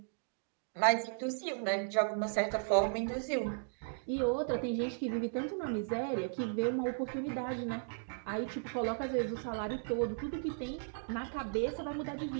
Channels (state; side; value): silent; left; digital silence